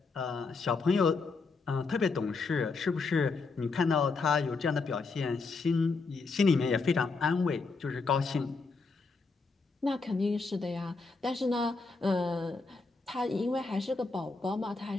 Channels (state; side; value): quieter; right; 4.2 dB